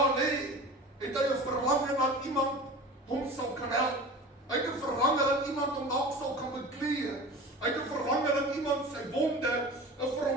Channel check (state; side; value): normal; both; correlation 0.36